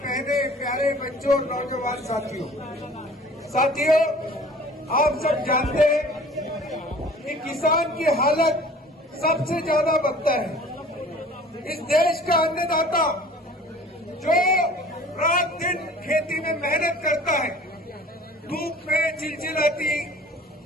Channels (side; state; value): both; normal; correlation 0.48